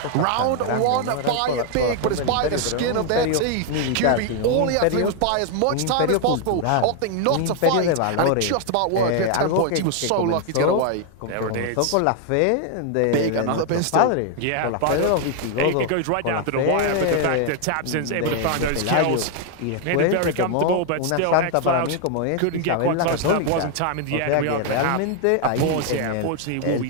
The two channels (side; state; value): both; different; correlation 0.00